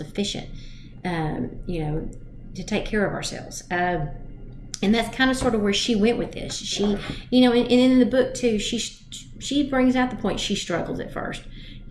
you know, to take care of ourselves. And that's kind of sort of where she went with this. She, you know, and in the book too, she brings out the point she struggles at first,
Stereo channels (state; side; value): identical; both; correlation 1.00